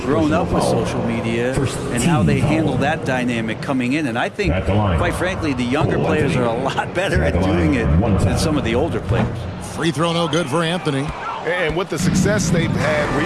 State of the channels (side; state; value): both; identical; correlation 1.00